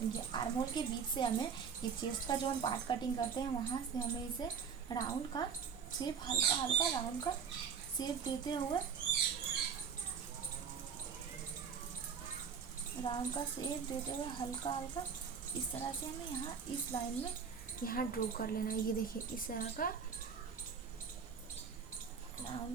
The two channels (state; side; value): quieter; left; 6.5 dB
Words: ये आर्म होल के बीच से हमें ये चेस्ट का जो हम पार्ट कटिंग करते हैं वहाँ से हमें इसे राउंड का शेप, हल्का हल्का राउंड का शेप देते हुए, हल्का हल्का इस तरह से हमें यहाँ इस लाइन में यहाँ ड्रॉ कर लेना है। ये देखिए, इस तरह का